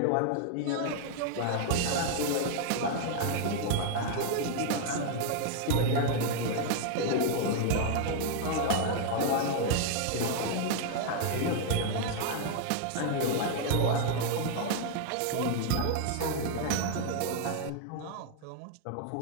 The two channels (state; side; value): different; both; correlation 0.00